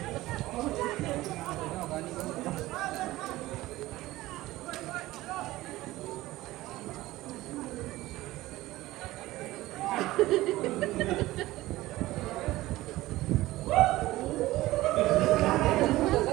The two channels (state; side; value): quieter; left; 17.5 dB